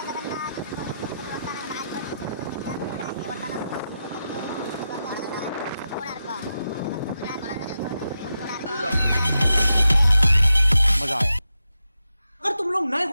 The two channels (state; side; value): inverted; both; correlation -0.88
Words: मजा आया। अगर तुम लोग नए